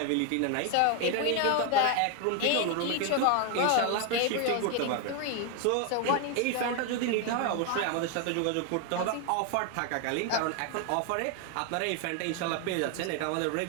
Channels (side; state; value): both; different; correlation 0.01